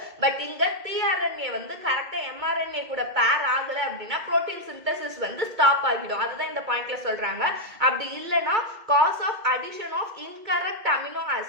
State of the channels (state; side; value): late; left; 2.2 ms